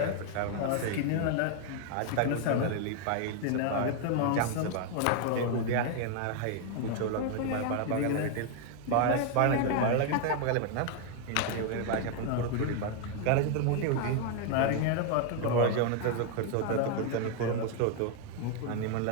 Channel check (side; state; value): both; different; correlation 0.00